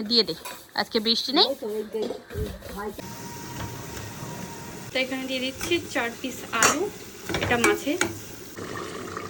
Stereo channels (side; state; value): both; identical; correlation 1.00